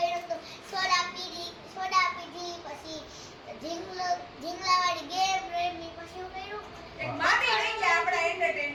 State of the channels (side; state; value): both; identical; correlation 1.00